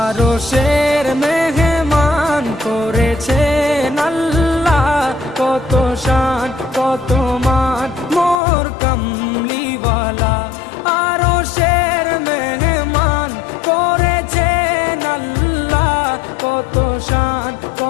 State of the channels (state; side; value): drops out; right; at 8.3 s